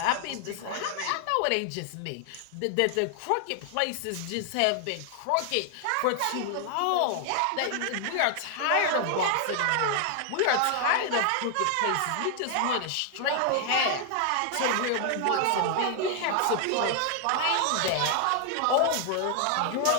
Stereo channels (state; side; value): different; both; correlation 0.00